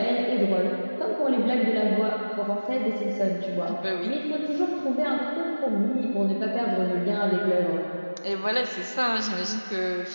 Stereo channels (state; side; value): inverted; both; correlation -1.00